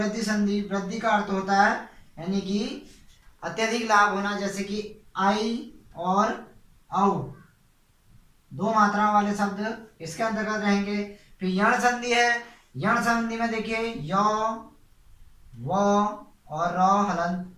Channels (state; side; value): identical; both; correlation 1.00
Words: संधि। वृद्धि का अर्थ होता है यानी कि अत्यधिक लाभ होना, जैसे कि आई और औ, 2 मात्रा वाले शब्द इसके अंतर्गत रहेंगे। फिर यण संधि है। यण संधि में देखिए य, व और र हलंत।